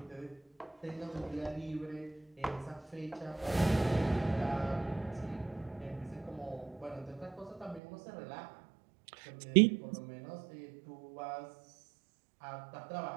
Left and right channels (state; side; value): drops out; left; at 7.8 s